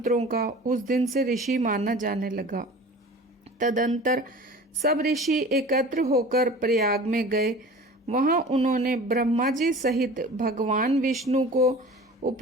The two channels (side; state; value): both; normal; correlation 0.41